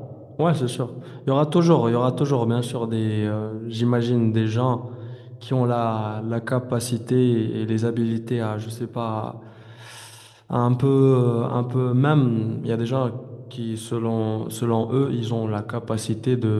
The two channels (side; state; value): both; identical; correlation 1.00